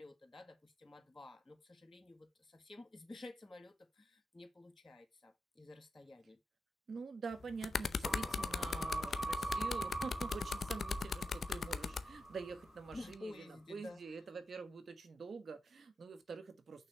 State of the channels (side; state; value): both; normal; correlation 0.87